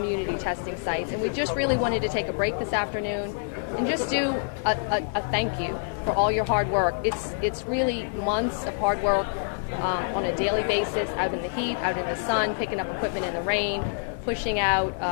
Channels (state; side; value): silent; right; digital silence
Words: testing sites. And we just really wanted to take a break this afternoon and just do a thank you for all your hard work. It's really months of hard work on a daily basis, out in the heat, out in the sun, picking up equipment in the rain, pushing